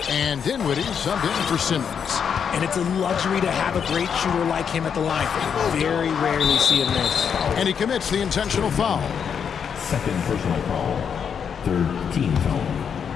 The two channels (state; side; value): quieter; right; 7.2 dB